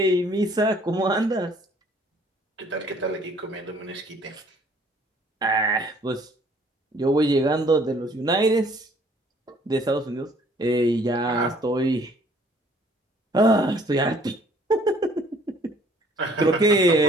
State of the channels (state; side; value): normal; both; correlation 0.58